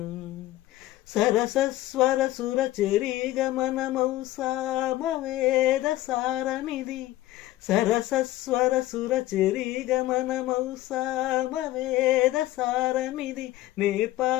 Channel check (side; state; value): right; quieter; 16.0 dB